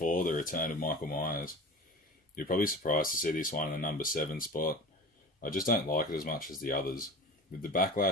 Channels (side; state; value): both; normal; correlation 0.35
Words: The Return of Michael Myers. You're probably surprised to see this one in the number 7 spot. I just don't like it as much as the others. With the